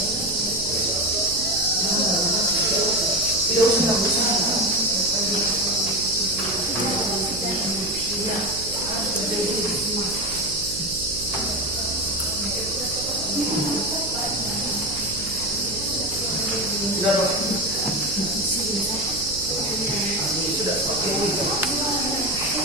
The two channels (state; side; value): noise; right; hum, 12 dB below the sound